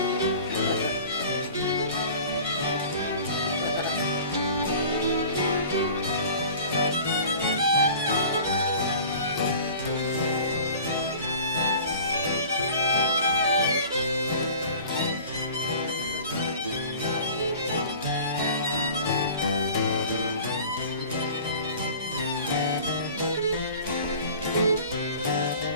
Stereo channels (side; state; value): both; inverted; correlation -0.43